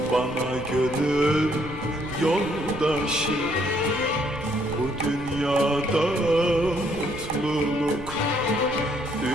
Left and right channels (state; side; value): noise; right; rumble, 14 dB below the sound